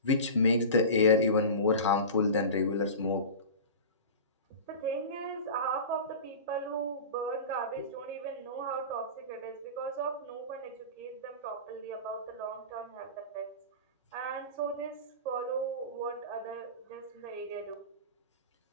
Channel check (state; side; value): inverted; both; correlation -0.31